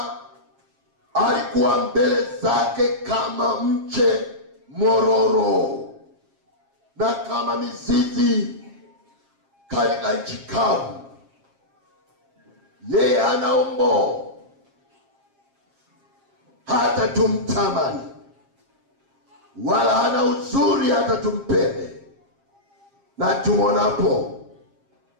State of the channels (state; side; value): late; left; 7.4 ms